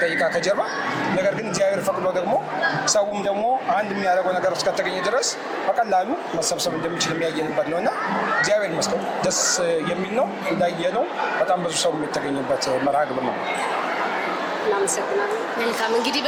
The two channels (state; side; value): identical; both; correlation 1.00